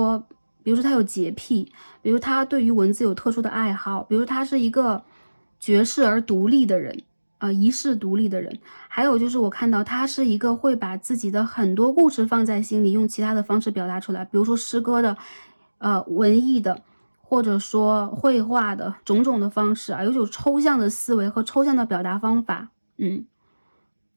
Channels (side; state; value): both; inverted; correlation -1.00